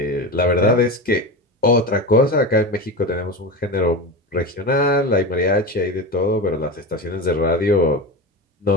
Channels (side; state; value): both; normal; correlation 0.24